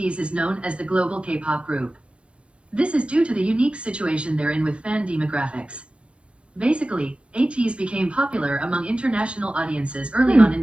is known as the global K-pop group. This is due to the unique situation they're in with fan demographics. Basically, ATEEZ became popular among international audiences early on in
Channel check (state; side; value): late; left; 0.059 ms